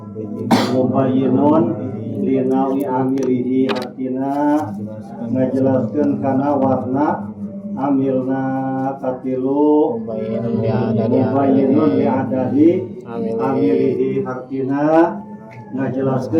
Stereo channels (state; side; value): identical; both; correlation 1.00